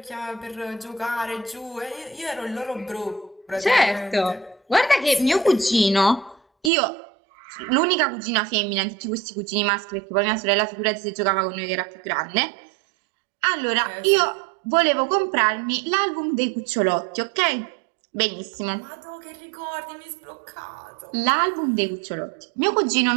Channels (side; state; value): left; drops out; at 6.7 s